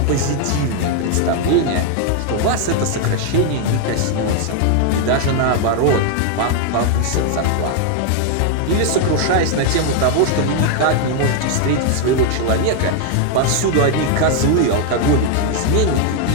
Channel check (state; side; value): different; both; correlation 0.00